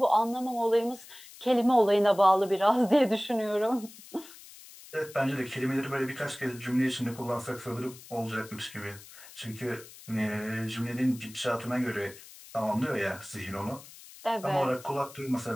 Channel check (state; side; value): noise; left; hiss, 19 dB below the sound